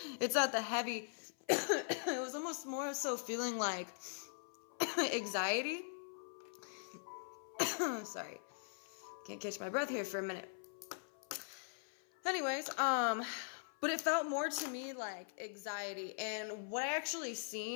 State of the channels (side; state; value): right; silent; 50 dB below the other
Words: it's not the heavy. It was almost more so feeling like anxiety. Sorry, can't catch my breath here for a minute. Anyways, but it felt more to me like anxiety. And what I actually